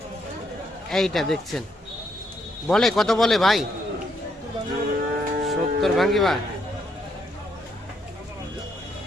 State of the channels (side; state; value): both; normal; correlation 0.74